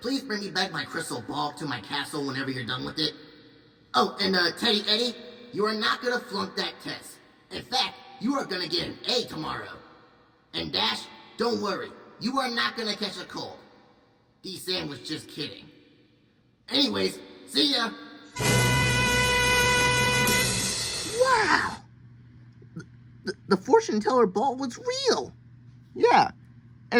Please bring me back my crystal ball to my castle whenever you're done with it. Oh, and, Teddy Eddie, you are not gonna flunk that test. In fact, you are gonna get an A tomorrow. And Dash, don't worry, you are not gonna catch a cold. D-Sam was just kidding. Anyways, see ya! Wow! The fortune teller ball was real. Yeah,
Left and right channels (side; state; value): both; identical; correlation 1.00